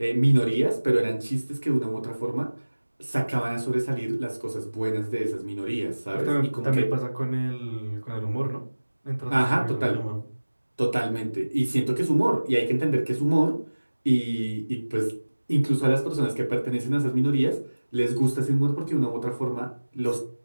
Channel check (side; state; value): both; inverted; correlation -1.00